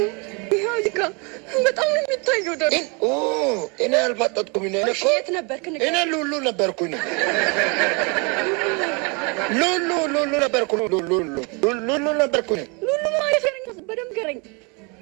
ይኸው ይካ በጣም ነው የሚታየው። ደግሞ እኔ አልፈጠጥኩም። እኔ እኮ የት ነበርክ? እኔ ሉሉ ነበርኩኝ ነው ሉሉ ነበርኩ ሉሉ ነበርኩ ነው ሉሉ ማለት ነው። በደምብ ገረኝ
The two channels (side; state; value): left; quieter; 31.5 dB